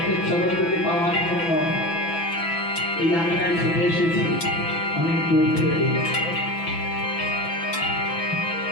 চরণগুলি পাওয়ার জন্য এই আঙ্গায় ছুটে এসেছি অনেক দূর থেকে।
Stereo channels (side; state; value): right; late; 6.0 ms